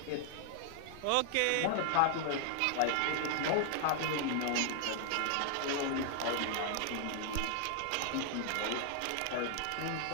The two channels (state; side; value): different; both; correlation 0.00